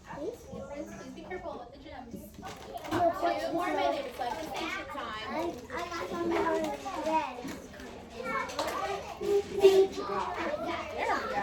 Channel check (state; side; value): identical; both; correlation 1.00